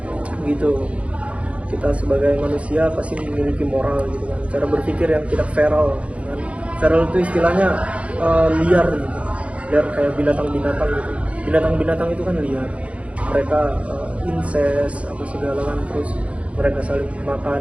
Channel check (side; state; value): left; late; 0.063 ms